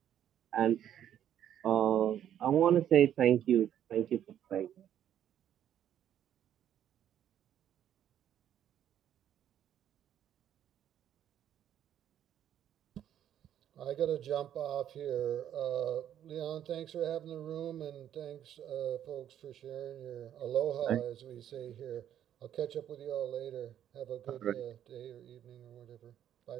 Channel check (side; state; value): left; quieter; 10.5 dB